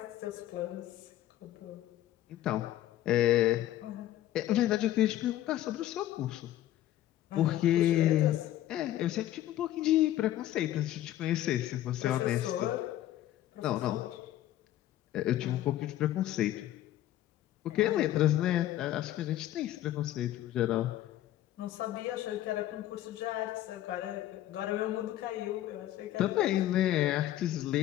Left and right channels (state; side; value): quieter; right; 13.5 dB